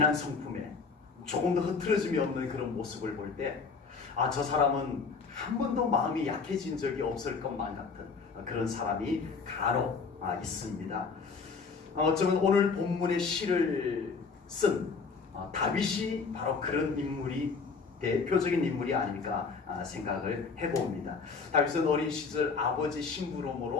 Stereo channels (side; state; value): right; quieter; 5.0 dB